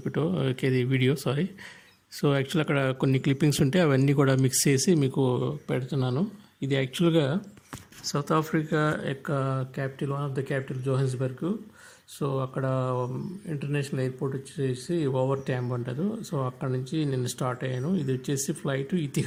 వీడియో. సో యాక్చువల్ అక్కడ కొన్ని క్లిప్పింగ్స్ ఉంటే అవన్నీ కూడా మిక్స్ చేసి మీకు పెడుతున్నాను. ఇది యాక్చువల్గా సౌత్ ఆఫ్రికా యొక్క capital, one of the capital Johannesburg. So అక్కడ ఇంటర్నేషనల్ ఎయిర్పోర్ట్ వచ్చేసి ఓవర్ ట్యాంబ్ అంటారు. సో అక్కడ నుంచి నేను స్టార్ట్ అయ్యాను. ఇది వచ్చేసి ఫ్లైట్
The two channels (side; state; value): both; identical; correlation 1.00